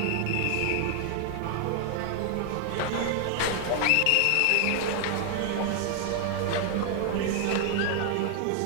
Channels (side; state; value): both; different; correlation 0.00